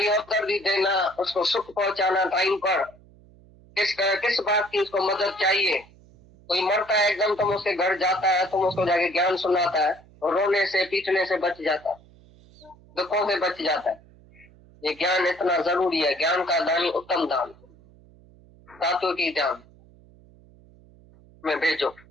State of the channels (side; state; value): right; noise; hum, 26 dB below the sound